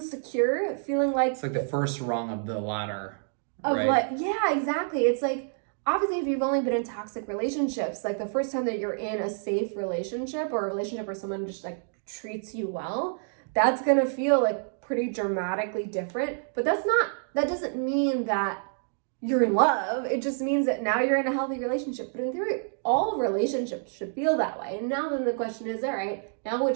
secure, feeling like it's like the first rung of the ladder. Of right? like, yeah, exactly. It's like, obviously, if you've only been in toxic relationships, like the first time that you're in a safe relationship or a relationship where someone just like treats you well, that's gonna feel like pretty dramatically different. But that doesn't mean that you're in love. It just means that now you're in a healthy relationship. But in theory, all relationships should feel that way. And now then the question is, all right, now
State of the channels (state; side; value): silent; left; digital silence